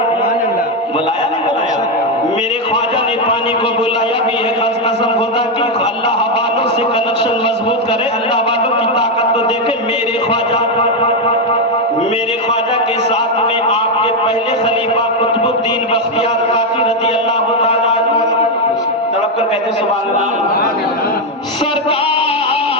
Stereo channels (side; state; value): both; normal; correlation 0.05